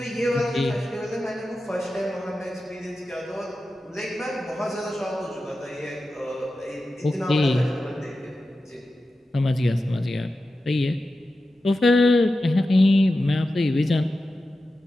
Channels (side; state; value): both; normal; correlation 0.92